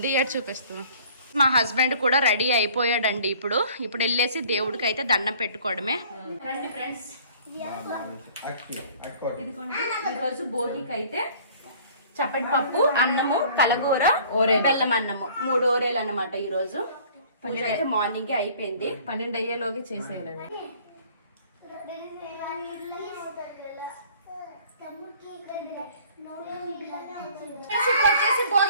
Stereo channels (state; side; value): inverted; both; correlation -0.52